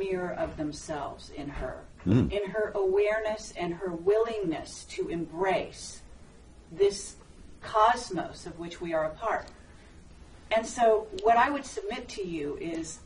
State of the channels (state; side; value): identical; both; correlation 1.00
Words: of themselves in her, in her awareness and her willingness to embrace this cosmos of which we are a part. And so what I would submit to you is,